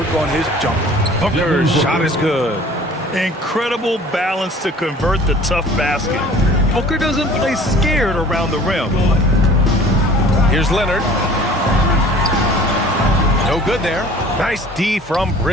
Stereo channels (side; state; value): both; normal; correlation 0.48